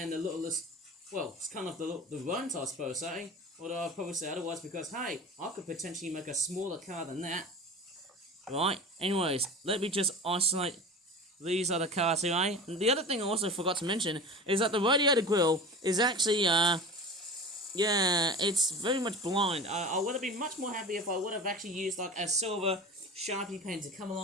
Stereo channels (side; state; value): both; normal; correlation 0.33